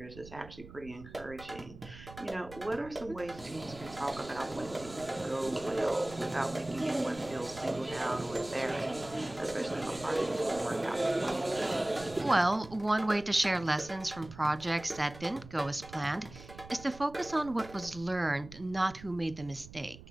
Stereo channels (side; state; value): right; noise; rumble, 17 dB below the sound